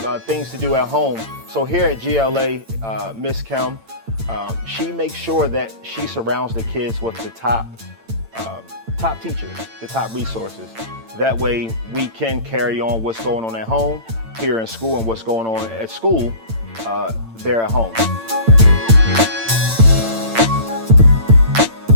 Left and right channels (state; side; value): late; left; 8.9 ms